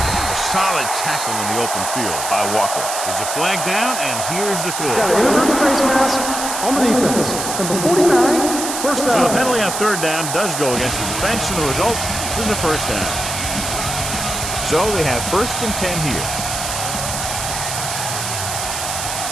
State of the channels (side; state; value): right; noise; hiss, 4 dB below the sound